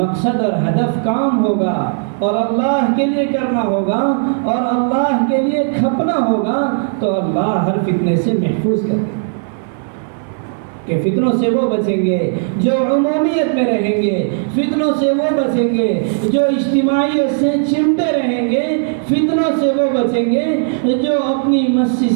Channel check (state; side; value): silent; left; 69 dB below the other